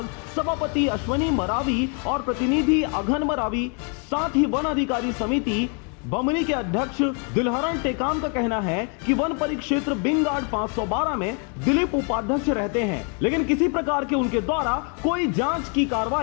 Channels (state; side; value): quieter; right; 38.4 dB